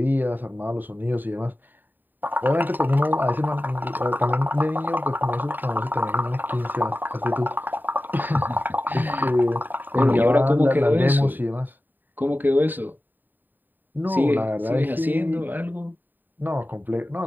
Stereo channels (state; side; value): late; left; 0.090 ms